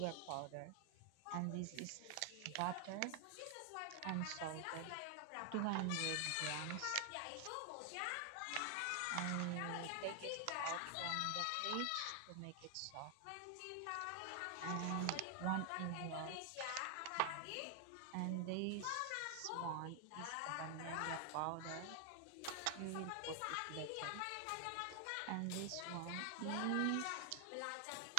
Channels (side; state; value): both; different; correlation 0.00